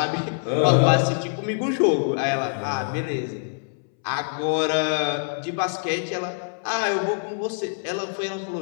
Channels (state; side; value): silent; right; 62 dB below the other